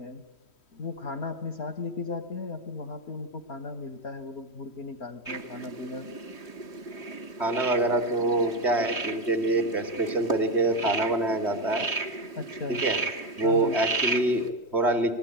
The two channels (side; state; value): right; late; 3.1 ms